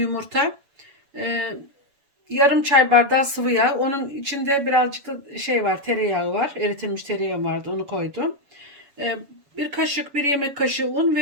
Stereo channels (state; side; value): late; left; 7.1 ms